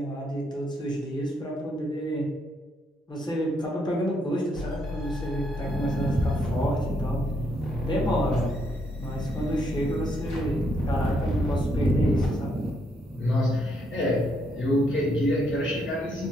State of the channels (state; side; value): normal; both; correlation 0.74